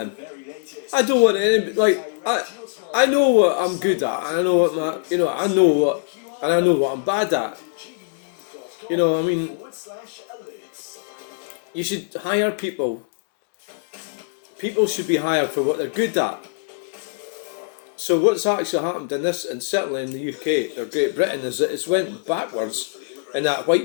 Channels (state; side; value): silent; right; 64 dB below the other